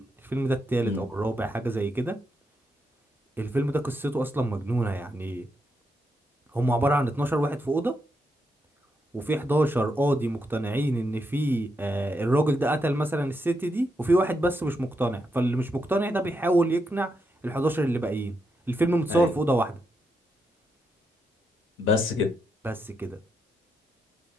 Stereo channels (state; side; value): normal; both; correlation 0.82